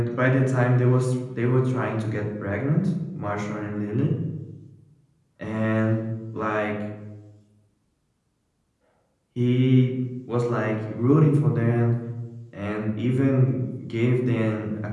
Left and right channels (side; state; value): both; identical; correlation 1.00